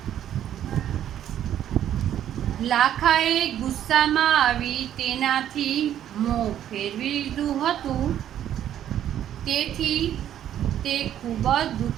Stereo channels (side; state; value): left; quieter; 10.8 dB